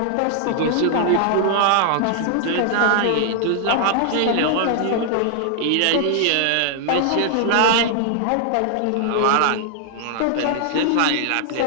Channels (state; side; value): different; both; correlation 0.00